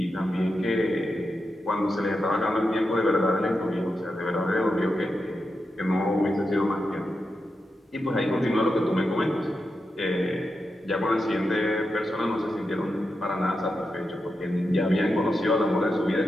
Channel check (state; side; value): normal; both; correlation 0.88